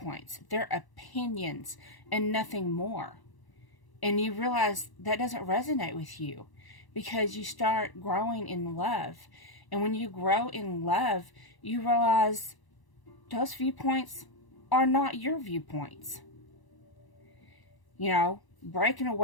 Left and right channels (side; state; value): right; late; 1.0 ms